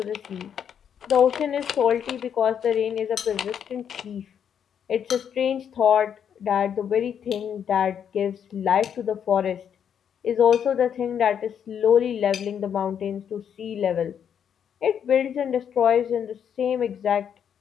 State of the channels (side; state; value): right; quieter; 8.3 dB